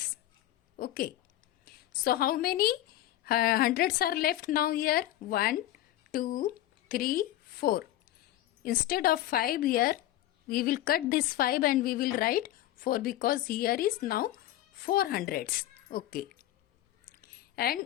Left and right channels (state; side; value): quieter; right; 14.2 dB